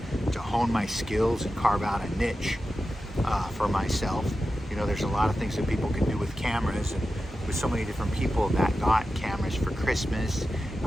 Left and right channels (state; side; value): normal; both; correlation 0.92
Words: hone my skills and carve out a niche for myself. There's a lot of things that people can do with cameras, and with so many different people that got cameras for Christmas.